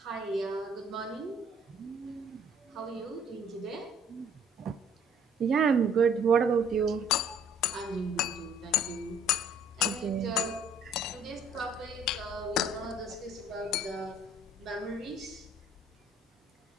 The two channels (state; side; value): normal; both; correlation 0.58